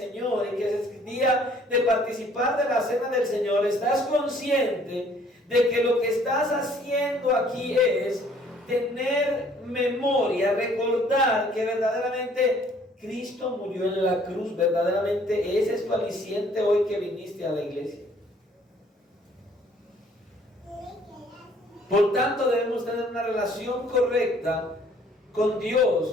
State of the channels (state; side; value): normal; both; correlation 0.59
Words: y que es día de participar de la cena del Señor, estás consciente de que lo que estás haciendo aquí es tener memoria, recordar que verdaderamente Cristo murió en la cruz? Verdaderamente ese es tu aliciente hoy que viniste a la iglesia. Por tanto, debemos tener una relación correcta con